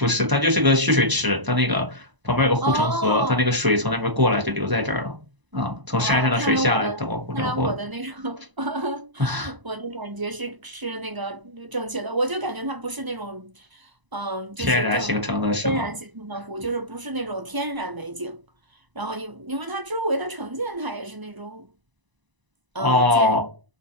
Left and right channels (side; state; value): left; late; 1.0 ms